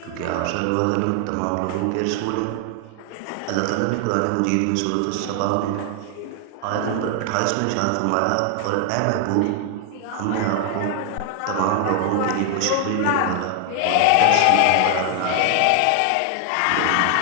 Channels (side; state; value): both; different; correlation 0.00